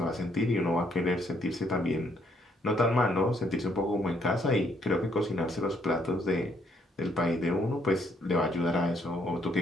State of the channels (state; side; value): normal; both; correlation 0.70